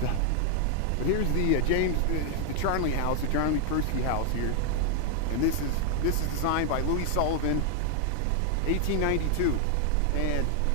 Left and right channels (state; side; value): different; both; correlation 0.00